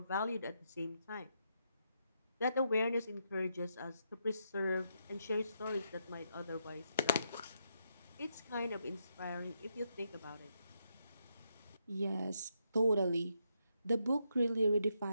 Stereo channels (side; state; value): both; inverted; correlation -0.79